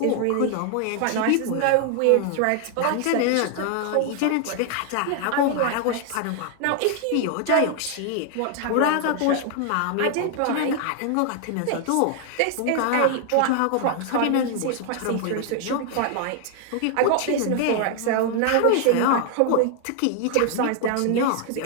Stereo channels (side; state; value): both; different; correlation 0.00